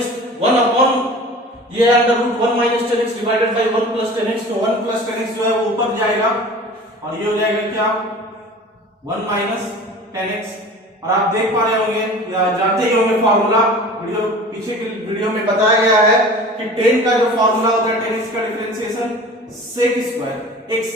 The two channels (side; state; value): both; normal; correlation 0.41